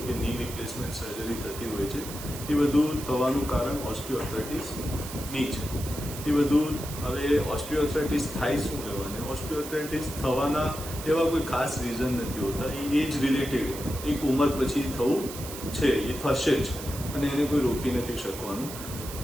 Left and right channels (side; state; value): right; noise; hiss, 11 dB below the sound